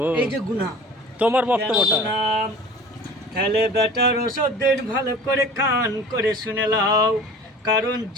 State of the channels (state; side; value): normal; both; correlation 0.42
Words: এই যে গুনাহ, তোমার বক্তব্যটা। তাহলে বেটার ওষুধ দিন, ভালো করে কান করে শুনে লাও। কারণ